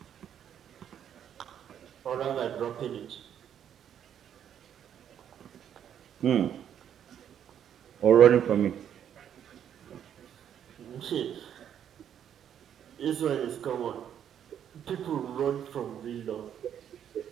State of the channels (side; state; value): left; quieter; 9.4 dB